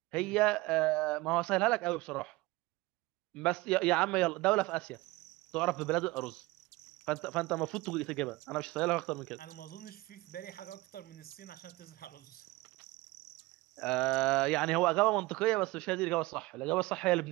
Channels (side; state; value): left; quieter; 21.2 dB